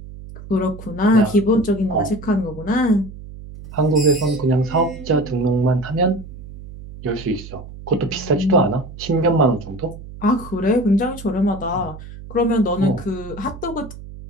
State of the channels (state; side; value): noise; right; hum, 14 dB below the sound